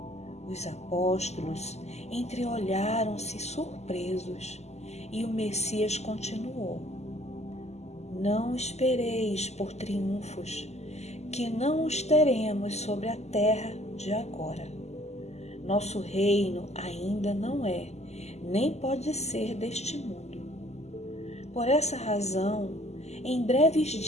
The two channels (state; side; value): late; right; 0.32 ms